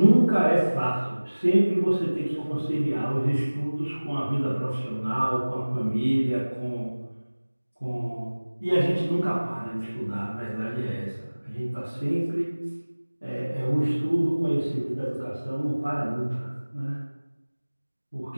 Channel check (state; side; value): inverted; both; correlation -1.00